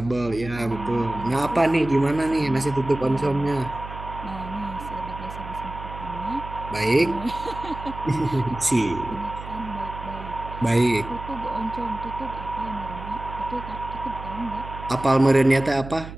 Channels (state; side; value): noise; right; hum, 11 dB below the sound